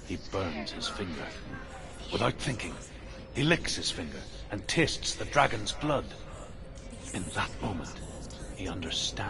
he burns his finger. Without thinking, he licks his finger and tastes the dragon's blood. In that moment, he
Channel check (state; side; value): identical; both; correlation 1.00